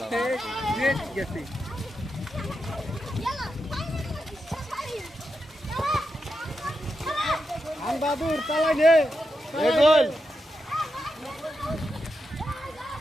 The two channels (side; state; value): both; normal; correlation 0.87